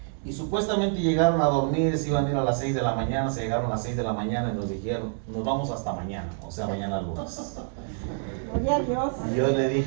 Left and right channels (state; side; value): silent; left; digital silence